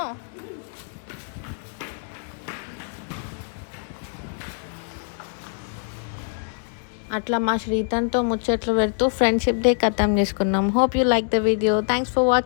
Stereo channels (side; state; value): right; silent; 62 dB below the other